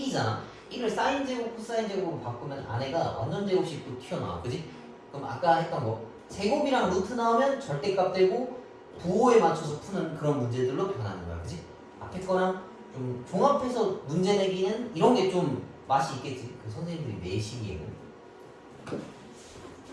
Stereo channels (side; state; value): both; identical; correlation 1.00